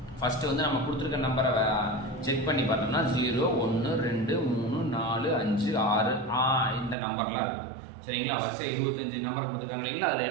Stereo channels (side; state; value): left; drops out; at 7.0 s